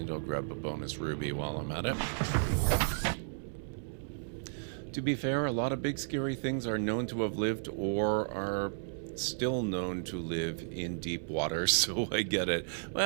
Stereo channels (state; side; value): silent; left; 55 dB below the other